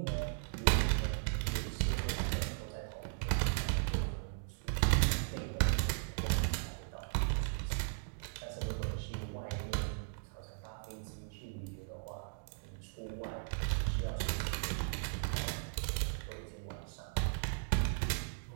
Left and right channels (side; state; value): left; silent; digital silence